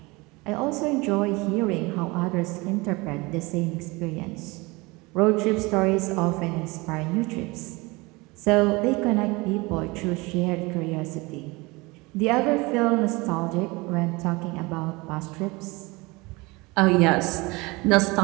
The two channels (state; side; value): quieter; left; 24.3 dB